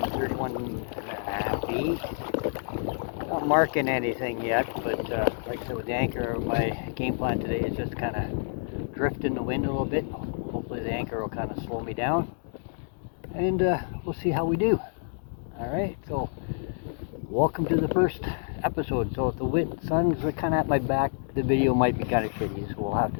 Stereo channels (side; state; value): right; silent; digital silence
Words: feet. Not marking anything yet, but like I said, with the anchor, my game plan today is just kind of drift in the wind a little bit. Hopefully the anchor will kind of slow me down, and we'll see how we do. Alright, so welcome to the first episode. So if the sun's kind of at my back, the video might be kind of shitty, so we'll have